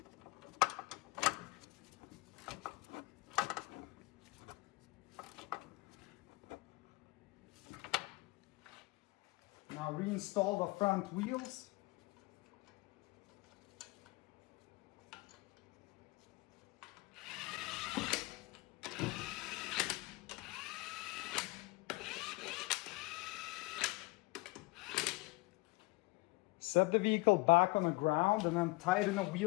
Now reinstall the front wheels. Set the vehicle back on the ground and then tighten the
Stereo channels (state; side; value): quieter; right; 23.8 dB